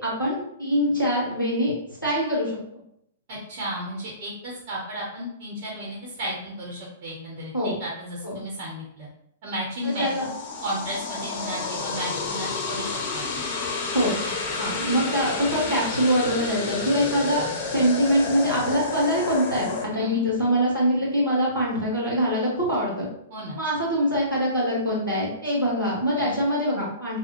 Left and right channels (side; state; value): both; inverted; correlation -0.46